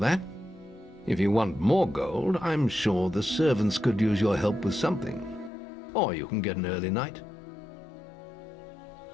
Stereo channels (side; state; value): right; drops out; at 5.5 s